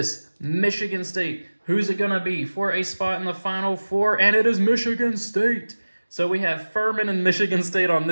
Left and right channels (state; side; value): inverted; both; correlation -1.00